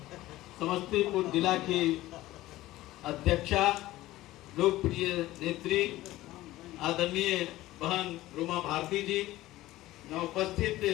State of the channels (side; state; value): right; quieter; 16.6 dB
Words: समस्तीपुर जिला की अध्यक्षा, लोकप्रिय नेत्री आदरणीय बहन रूमा भारती जी, यहाँ उपस्थित